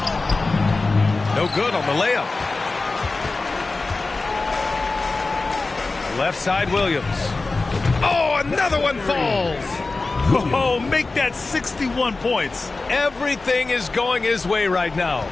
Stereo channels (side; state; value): right; quieter; 3.6 dB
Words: No good on the layup. Left side Williams. Oh, another one falls. Oh, make that 61 points. Everything is going his way right now.